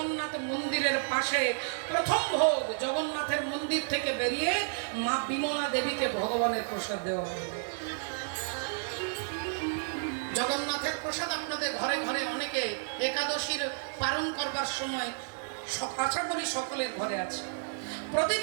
মন্দিরের পাশে প্রথম ভোগ জগন্নাথের মন্দির থেকে বেরিয়ে মা বিমলা দেবীকে ভগবানের প্রসাদ দেওয়া হবে। জগন্নাথের প্রসাদ আপনাদের ঘরে ঘরে অনেকে একাদশীর পালন করবার সময় আশা করি সকলের ঘরে আছে।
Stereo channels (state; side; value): silent; left; digital silence